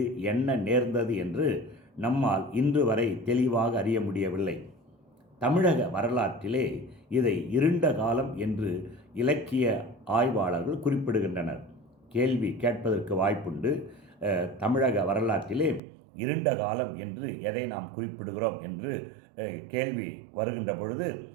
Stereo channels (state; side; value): drops out; left; at 15.8 s